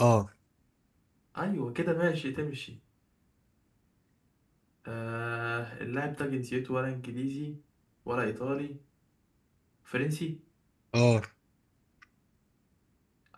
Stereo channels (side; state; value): both; identical; correlation 1.00